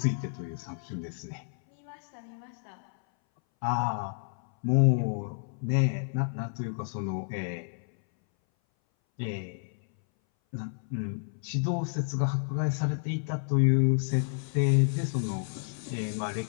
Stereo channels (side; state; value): right; silent; 58 dB below the other